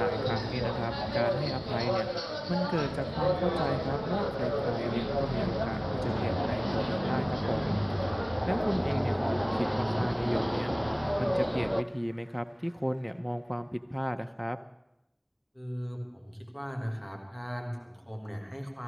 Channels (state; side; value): identical; both; correlation 1.00